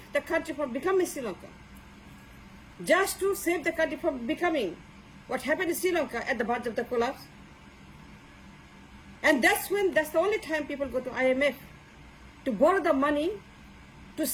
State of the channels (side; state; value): both; identical; correlation 1.00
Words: the country from becoming Sri Lanka. Just to save the country from becoming what happened in Sri Lanka at the verge of the collapse. And that's the only time people go to IMF to borrow the money to